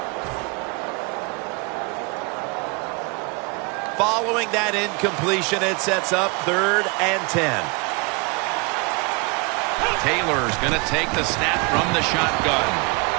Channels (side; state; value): left; quieter; 30.1 dB